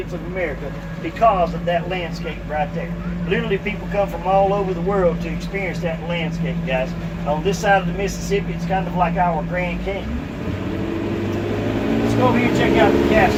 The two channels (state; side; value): identical; both; correlation 1.00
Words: of America because of that landscape right there. Literally people come from all over the world to experience that landscape, guys. On this side of the Mississippi, it's kind of like our Grand Canyon. Let's go over here and check out the